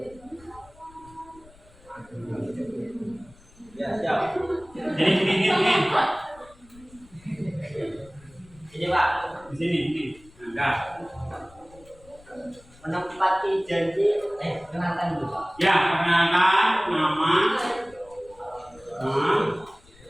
Ya, siap. Ini. Ini Pak, Di sini. Enggak. menempati janji. Kenalkan dulu Pak. Ya, perkenalkan nama.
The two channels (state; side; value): noise; left; rumble, 25 dB below the sound